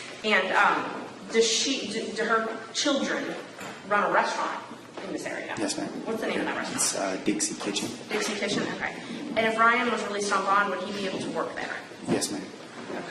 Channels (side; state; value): both; identical; correlation 1.00